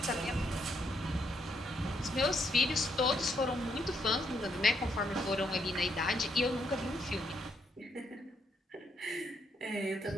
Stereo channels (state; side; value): normal; both; correlation 0.75